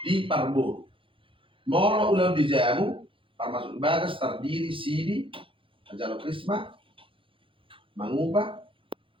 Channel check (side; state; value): left; late; 0.25 ms